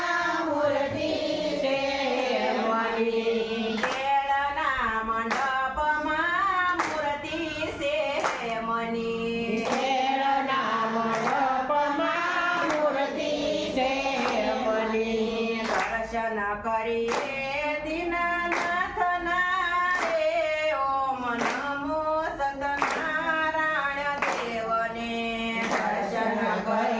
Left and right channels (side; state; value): both; identical; correlation 1.00